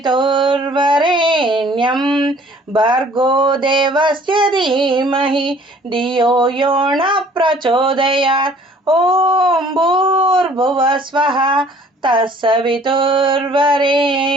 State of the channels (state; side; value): normal; both; correlation 0.55